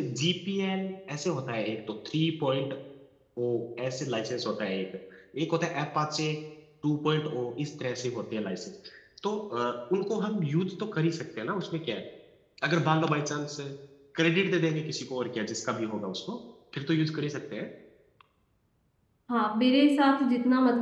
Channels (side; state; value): both; identical; correlation 1.00